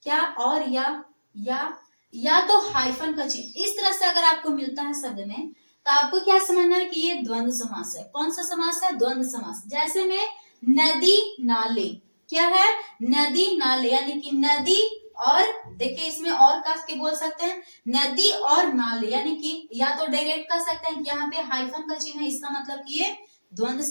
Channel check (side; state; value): both; inverted; correlation -1.00